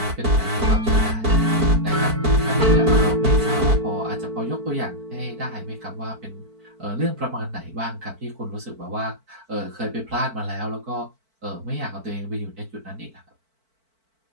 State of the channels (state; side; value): late; left; 4.5 ms